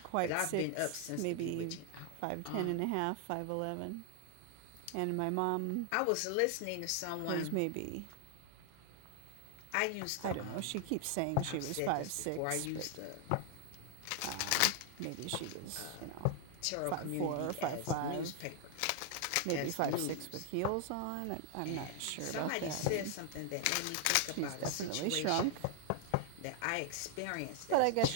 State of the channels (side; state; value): both; different; correlation 0.00